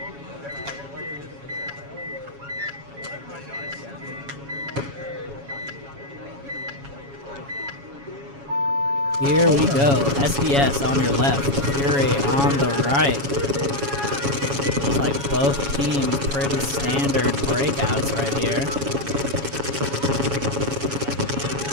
Here we go. SDS on your left, Fury on the right. Looks like both teams pretty standard breakouts right here.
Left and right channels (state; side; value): late; left; 7.2 ms